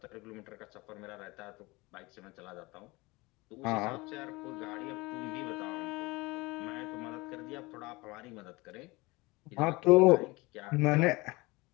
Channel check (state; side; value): quieter; right; 23.3 dB